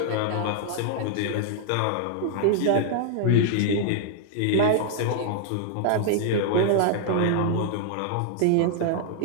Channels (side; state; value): both; different; correlation -0.01